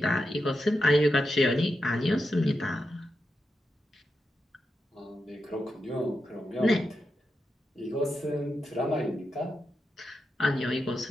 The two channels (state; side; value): normal; both; correlation 0.87